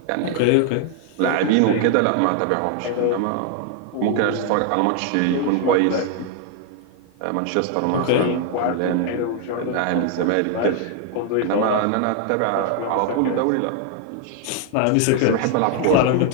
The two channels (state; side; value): different; both; correlation 0.00